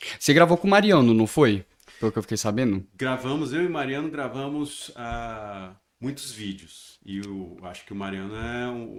Você gravou com o Mariano, não foi? Pelo que eu fiquei sabendo. Eu e Mariano gravamos muitos vídeos. E eu acho que o Mariano é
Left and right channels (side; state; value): both; identical; correlation 1.00